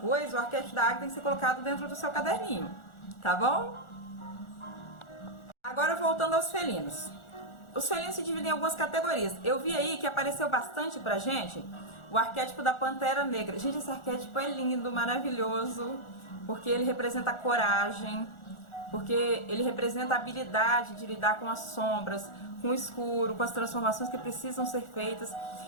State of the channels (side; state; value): right; late; 1.4 ms